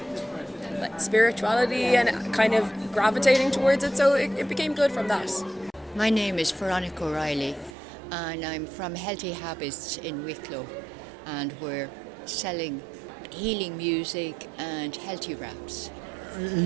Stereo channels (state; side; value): drops out; left; at 7.8 s